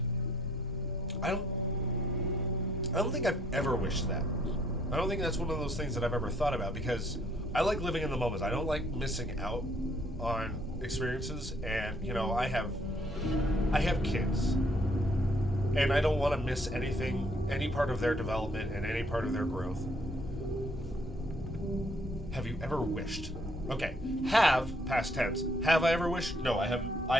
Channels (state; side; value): normal; both; correlation 0.65